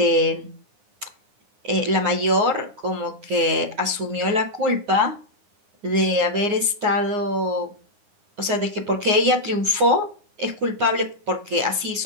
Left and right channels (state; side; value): late; left; 9.5 ms